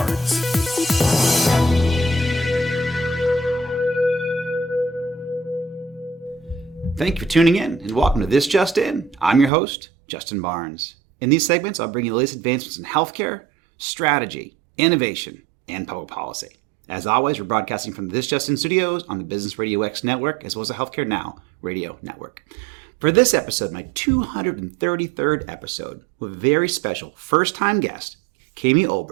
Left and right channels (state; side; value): drops out; left; at 9.5 s